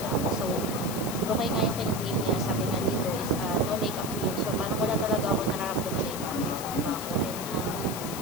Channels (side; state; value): left; noise; hiss, 9 dB below the sound